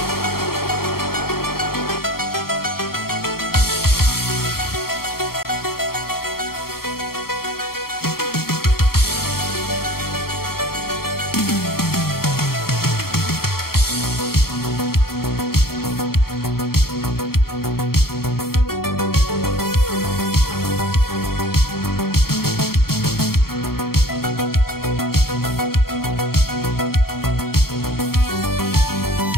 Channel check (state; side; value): late; right; 0.94 ms